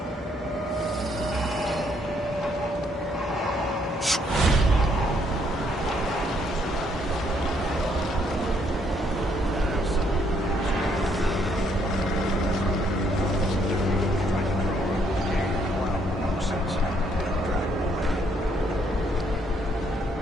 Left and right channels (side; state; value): both; normal; correlation 0.70